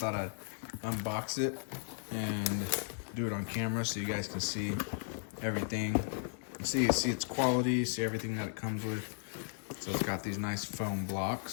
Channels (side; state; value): right; silent; digital silence